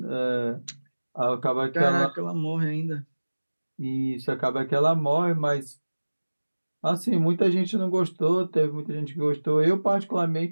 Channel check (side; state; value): both; inverted; correlation -1.00